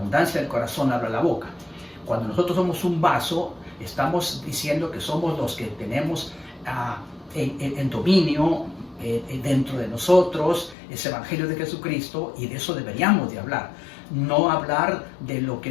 del corazón habla la boca. Cuando nosotros somos un vaso, estamos diciendo que somos los que tenemos en dominio dentro de nosotros ese evangelio de Jesucristo, y de eso deberíamos de hablar. No hablar de lo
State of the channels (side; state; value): right; drops out; at 10.8 s